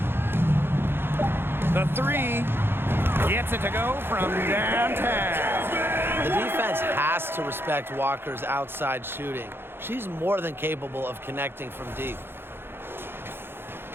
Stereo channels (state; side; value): late; left; 0.11 ms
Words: The 3 gets it to go from downtown. The defense has to respect Walker's outside shooting. She's more than capable of connecting from deep.